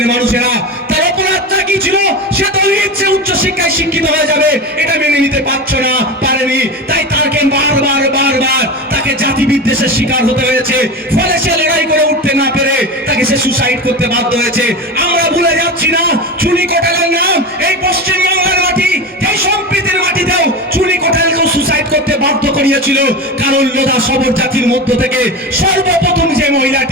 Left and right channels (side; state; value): both; normal; correlation 0.24